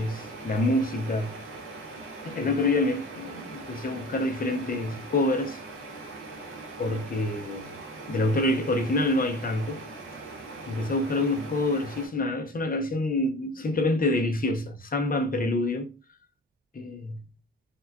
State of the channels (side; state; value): both; normal; correlation 0.39